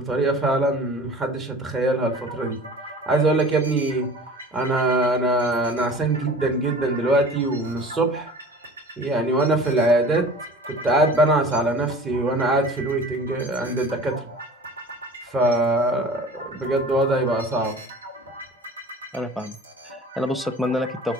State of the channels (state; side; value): normal; both; correlation 0.42